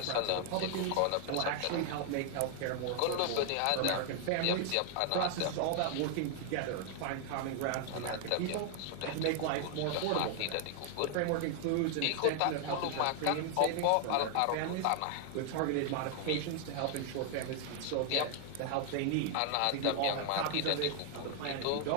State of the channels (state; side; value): different; both; correlation 0.00